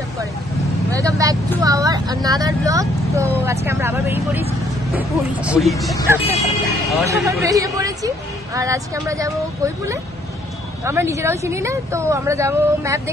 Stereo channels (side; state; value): both; normal; correlation 0.66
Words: Welcome back to our another blog. তো আজকে আমরা আবার বেরিয়ে পড়েছি আর আজকে আমরা যাব কৈপুলে। আমরা নিজেরাও চিনি না, তো আমরা যাব ম্যাপ